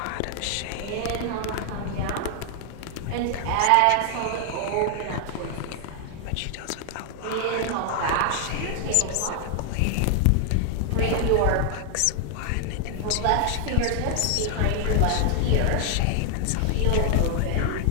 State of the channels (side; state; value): both; different; correlation 0.00